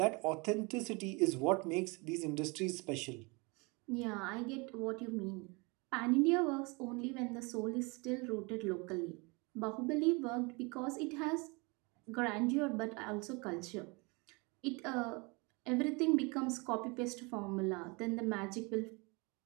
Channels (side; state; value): left; quieter; 28.5 dB